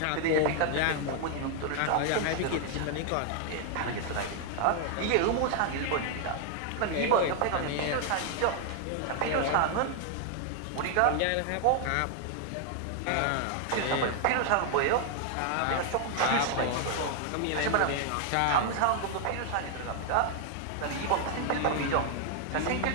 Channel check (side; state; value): both; different; correlation 0.00